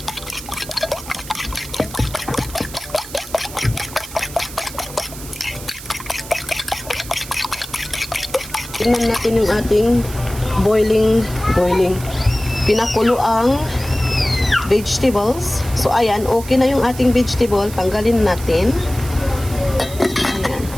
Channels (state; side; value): noise; right; hiss, 14 dB below the sound